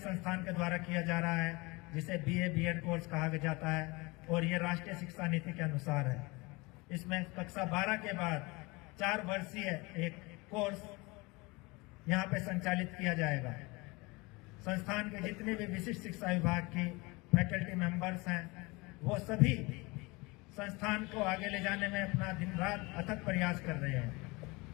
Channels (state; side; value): quieter; right; 25.1 dB